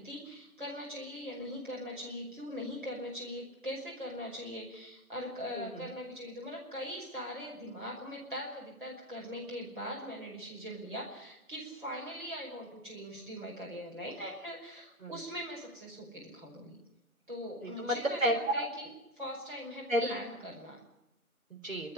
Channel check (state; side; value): normal; both; correlation 0.18